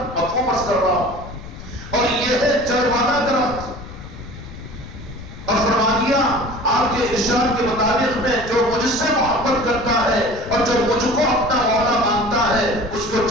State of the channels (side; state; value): left; noise; rumble, 15 dB below the sound